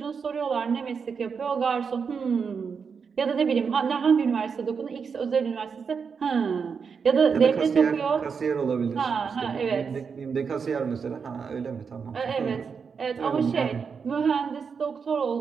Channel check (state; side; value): quieter; left; 5.9 dB